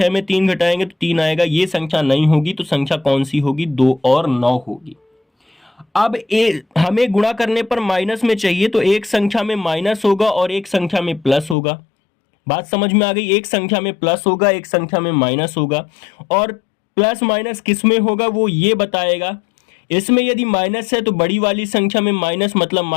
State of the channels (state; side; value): drops out; right; at 11.6 s